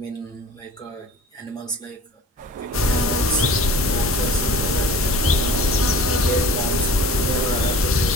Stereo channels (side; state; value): both; normal; correlation 0.44